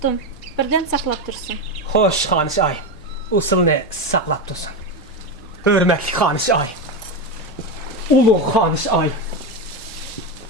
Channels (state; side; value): normal; both; correlation 0.13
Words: birden saklap dursun. Hoş Hanışı ayım. O seni saklap dursun. Hürmetli Hanışı ayım. Ulu Hanışı ayım.